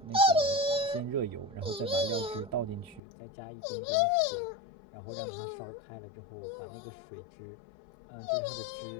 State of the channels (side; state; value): right; drops out; at 3.0 s